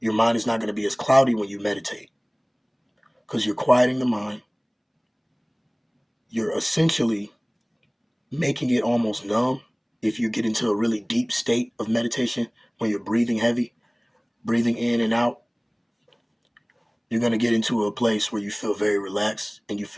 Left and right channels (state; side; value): identical; both; correlation 1.00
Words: mind is not gonna be as cloudy when you meditate, because you're quieting the mind. You're essentially making it almost numb. If you get into a really deep state of meditation, when you're breathing heavy, breathing in and out, you're going to get into a place where you feel very relaxed and you